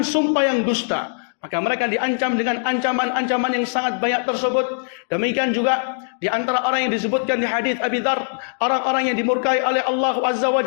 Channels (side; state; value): right; silent; digital silence